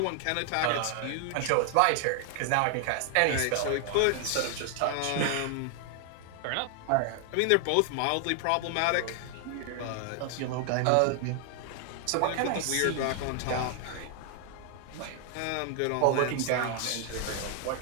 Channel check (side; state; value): both; different; correlation 0.00